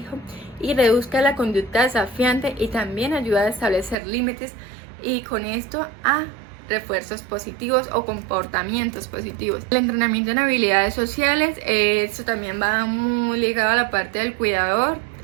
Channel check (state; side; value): drops out; left; at 4.0 s